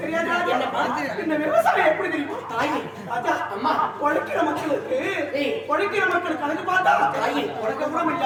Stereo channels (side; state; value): both; identical; correlation 1.00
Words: தெரியாதா? என்னப்பா? இந்த விவசாயம் எப்படி தெரியுமா? தாயி. ராஜா, அம்மா. உழைக்கிற மக்களுக்கு ஏய். உழைக்கிற மக்களுக்கு கணக்கு பார்த்தா தாயி. உனக்கு கூட